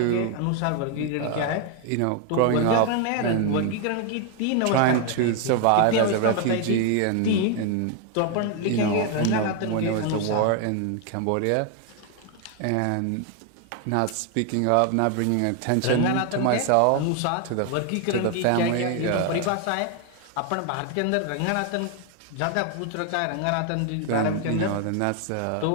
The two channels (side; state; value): both; different; correlation 0.00